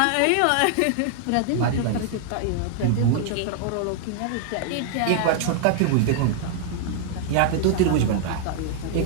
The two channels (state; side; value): different; both; correlation 0.00